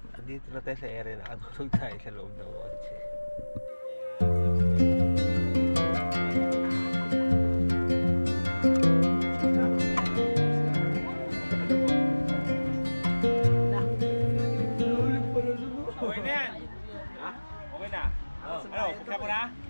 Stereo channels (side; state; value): both; inverted; correlation -1.00